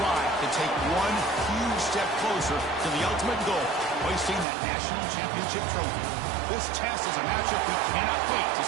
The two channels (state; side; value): drops out; left; at 4.5 s